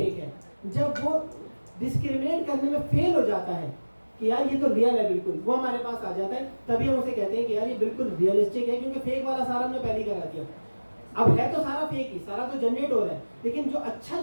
है। जब वो डिस्क्रिमिनेट करने में फेल हो जाता है कि यार ये तो रियल है बिल्कुल, वो हमारे पास आ जाता है, तभी हम उसे कहते हैं कि यार ये बिल्कुल रियलिस्टिक है, क्योंकि फेक वाला सारा हमने पहले ही करा दिया। अब है तो सारा फेक ही, सारा तो जनरेट हो रहा है, लेकिन जो अच्छा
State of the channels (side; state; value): both; inverted; correlation -1.00